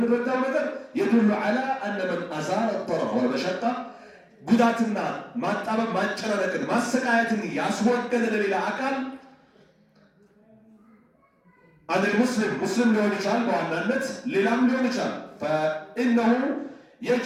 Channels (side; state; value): both; identical; correlation 1.00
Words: ነገር يدل على أن من أزال الضرر والمشقة ጉዳትና ማጣበብ ማጨናነቅን ማሰቃየትን ያስወገደ ለሌላ አካል አንድ ሙስሊም ሊሆን ይችላል፣ በዋናነት ሌላም ሊሆን ይችላል። فإنه